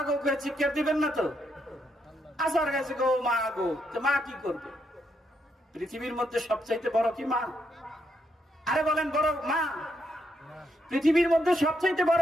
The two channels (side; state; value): both; normal; correlation 0.78